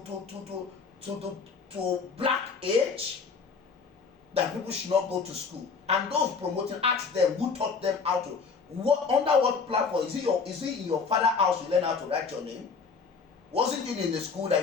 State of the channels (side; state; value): right; quieter; 5.2 dB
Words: Black Age? That people should not go to school. And those promoting, ask them who taught them how to. Under what platform? Is it in your father's house you learn how to write your name? Wasn't it in the school that